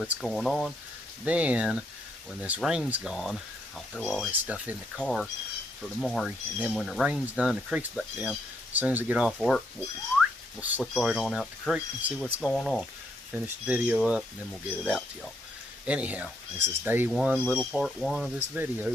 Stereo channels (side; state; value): both; normal; correlation 0.75